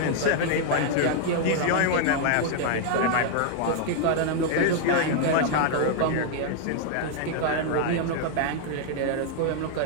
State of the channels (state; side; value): different; both; correlation 0.00